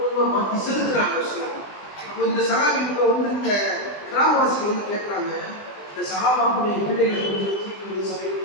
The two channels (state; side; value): late; right; 20 ms